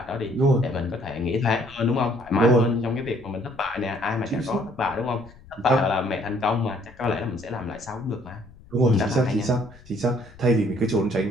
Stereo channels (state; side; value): noise; left; rumble, 23 dB below the sound